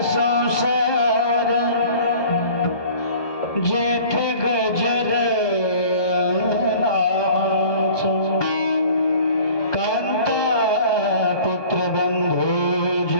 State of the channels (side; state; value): right; late; 1.2 ms